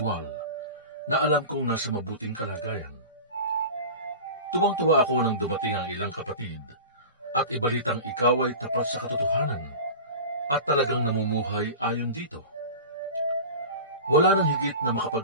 na alam kong nasa mabuting kalagayan. Tuwang-tuwa ako nang dumating ang ilang kapatid at ibalitang ikaw ay tapat sa katotohanan at talagang namumuhay ayon dito. Wala nang higit na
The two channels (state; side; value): inverted; both; correlation -0.33